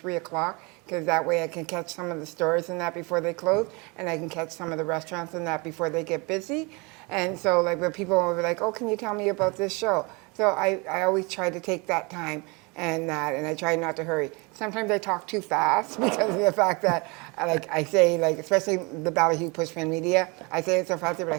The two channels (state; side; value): quieter; left; 28.6 dB